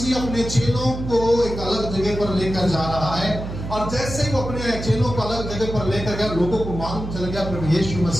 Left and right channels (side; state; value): right; noise; hum, 7 dB below the sound